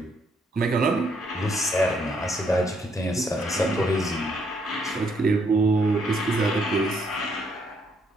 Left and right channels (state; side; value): normal; both; correlation 0.71